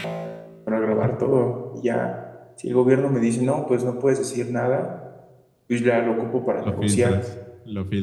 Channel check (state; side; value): identical; both; correlation 1.00